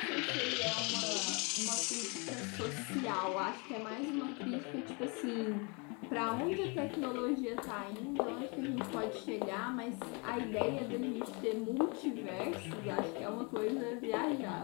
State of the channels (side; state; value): right; quieter; 32.2 dB